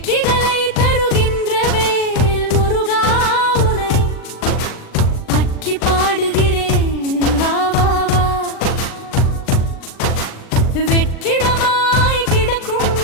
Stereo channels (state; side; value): late; right; 39 ms